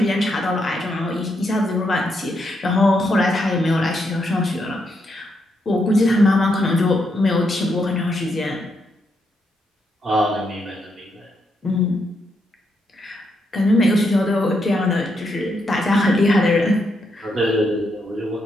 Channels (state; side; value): normal; both; correlation 0.79